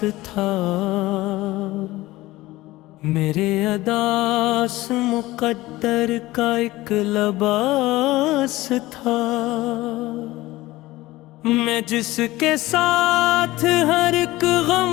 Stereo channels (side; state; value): right; quieter; 18.3 dB